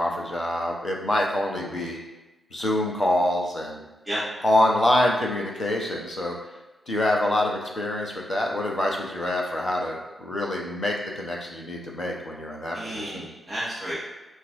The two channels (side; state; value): both; normal; correlation 0.84